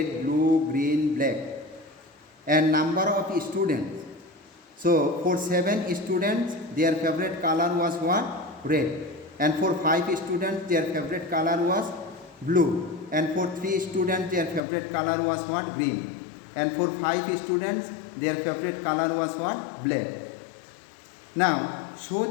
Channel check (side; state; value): right; drops out; at 14.6 s